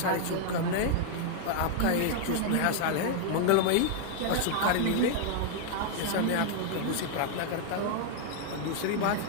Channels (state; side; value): different; both; correlation 0.00